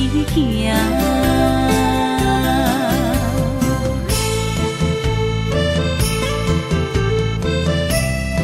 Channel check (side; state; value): both; identical; correlation 1.00